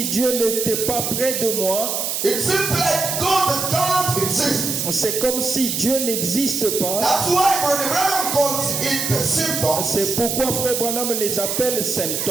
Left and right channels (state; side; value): noise; right; hiss, 1 dB below the sound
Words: Dieu n'était pas près de moi. It seems like God can't exist. C'est comme si Dieu n'existe pas. That's why Brother Branham calls it symptoms. C'est pourquoi Frère Branham les appelle